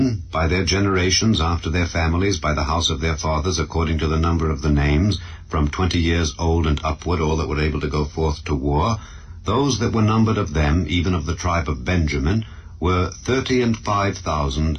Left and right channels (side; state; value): both; identical; correlation 1.00